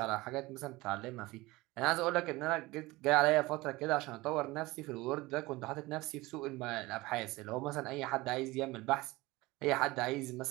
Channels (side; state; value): left; quieter; 20.8 dB